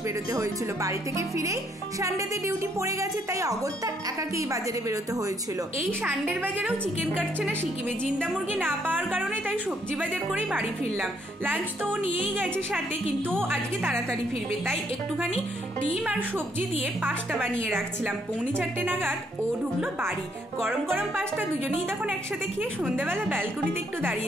বেরোতে হয়েছিল। বাড়ি থেকে ফিরেই সানডেতে ডিউটি পড়ে গেছে, তাই অগত্যা একাকেই বাজারে বেরোতে হয়েছিল। এই সানডের বাজারেও চিকেন কাটছে না সিকিমে, জিন্দা মুরগি না পাওয়ার কারণে, তাই সবজি বাজার করেই বাড়ি ফিরলাম। লাঞ্চ তো ও নিয়েই গেছে সাথে, কিন্তু ও আজকে তাড়াতাড়ি ফিরবে, তাই একটুখানি ডিম আর সবজি দিয়ে পাস্তা বানিয়ে রাখছিলাম। 4:45 নাগাদ ও ঢুকলো বাড়ি। গরম গরম পাস্তা দুজনেই তখন একসাথে খেয়ে সন্ধ্যাবেলা ব্যালকনিতে একটু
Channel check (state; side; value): normal; both; correlation 0.71